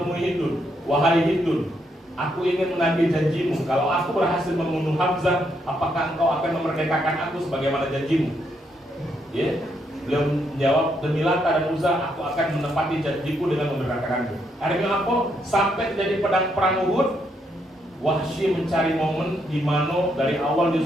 Hindun, wahai Hindun, aku ingin menagih janjimu. Kalau aku berhasil membunuh Hamzah, apakah engkau akan memerdekakan aku sebagaimana janjimu? Ya, beliau menjawab, demi Lata dan Uzza, aku akan menepati janjiku dengan memerdekakanmu. Akhirnya apa? Sampai terjadi perang Uhud, Wahsy mencari momen di mana dari awal dia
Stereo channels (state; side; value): normal; both; correlation 0.76